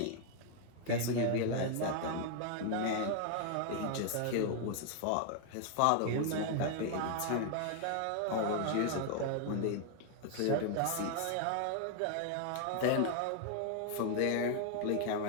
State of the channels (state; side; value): different; both; correlation 0.00